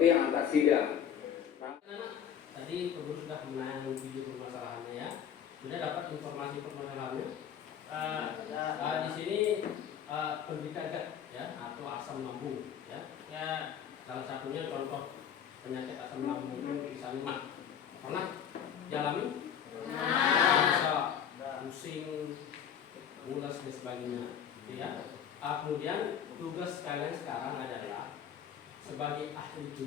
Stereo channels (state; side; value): quieter; right; 8.6 dB